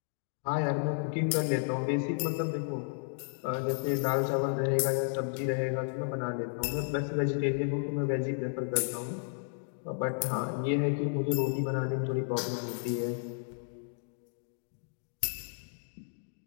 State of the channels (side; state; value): right; silent; digital silence